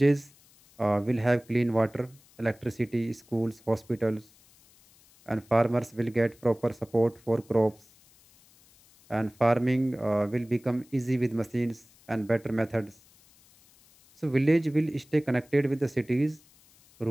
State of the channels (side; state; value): left; noise; hiss, 29 dB below the sound